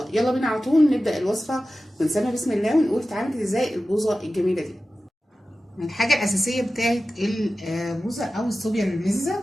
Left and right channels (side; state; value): both; normal; correlation 0.94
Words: يلا بينا على طول نبدا الوصفه ونسمي بسم الله ونقول اتعملت ازاي البوظه الجميله دي. الحاجه الاساسيه بتاعت البوظه او الصوبيا المززه